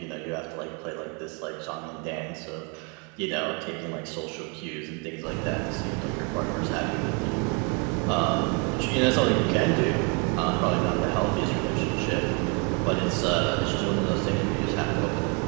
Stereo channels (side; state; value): left; quieter; 34.5 dB